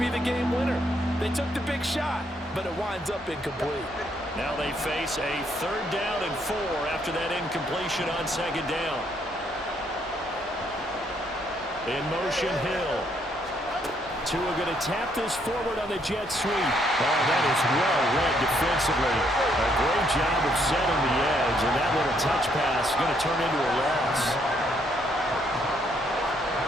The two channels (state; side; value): normal; both; correlation 0.71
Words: the game winner. They took the big shot, but it winds up incomplete. Now they face a 3rd down and 4 after that incompletion on 2nd down. In motion, Hill. Tua going to tap this forward on the jet sweep. Oh, that is well read defensively. A great job of setting the edge, and that little touch pass is going to turn into a loss.